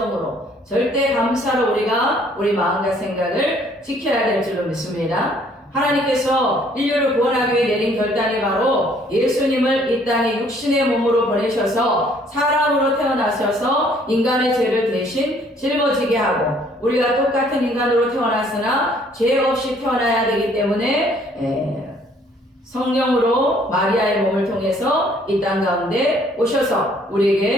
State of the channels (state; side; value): normal; both; correlation 0.61